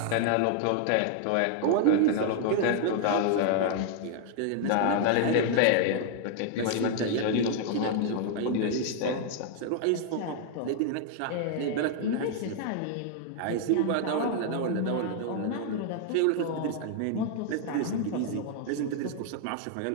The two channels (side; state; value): both; different; correlation 0.00